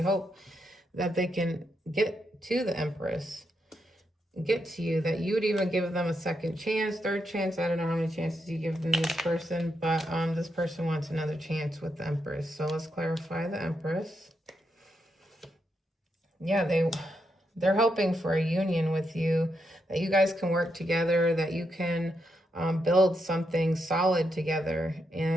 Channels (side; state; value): both; normal; correlation 0.82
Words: hope that they can get to the Empress, get to you, that you would even give them a second chance, third chance. I don't know how many chances you give them this person, but this person wants another chance with the Empress. So let's clarify the Empress. Yeah, they're hoping for a union with you, that you guys can work together, that you can build something solid together.